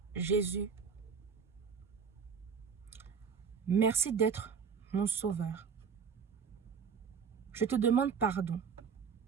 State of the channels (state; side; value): quieter; left; 6.3 dB